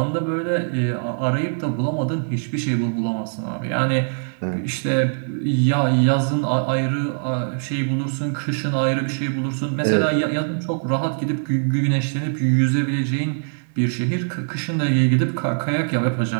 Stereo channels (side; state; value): left; silent; digital silence